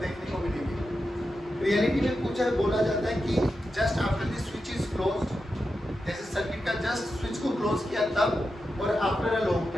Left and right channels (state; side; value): normal; both; correlation 0.89